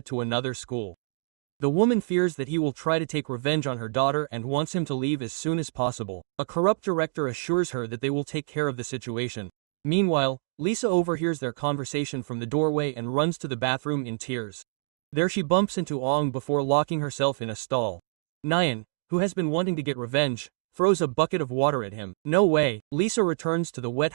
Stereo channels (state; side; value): silent; left; digital silence